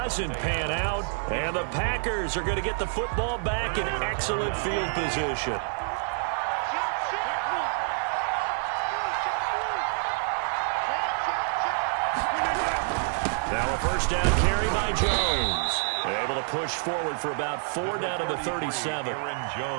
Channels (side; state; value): left; silent; 59 dB below the other